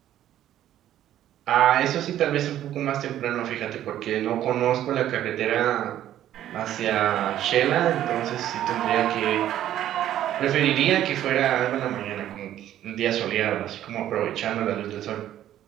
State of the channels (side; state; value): left; quieter; 12.0 dB